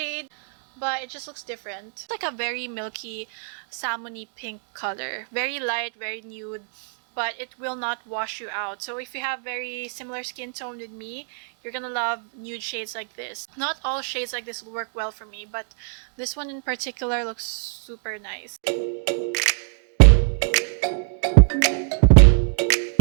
but it just looks different. It's like a very milky, salmony pink color. Very light, very nude. but it will not wash you out. So if you have very similar skin tone with me, you're gonna love nude shades like this. Not all shades like this will work well for me, but this one in particular looks super nice.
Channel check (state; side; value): silent; left; 62 dB below the other